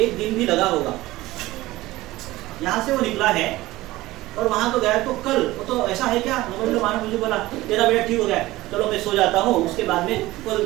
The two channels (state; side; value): quieter; left; 18.0 dB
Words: दिन भी लगा होगा। यहाँ से वो निकला है और वहां तो गया तो कल, वो तो ऐसा है क्या, मानो मुझे बोला तेरा बेटा ठीक हो गया, चलो मैं सो जाता हूँ, उसके बाद में कल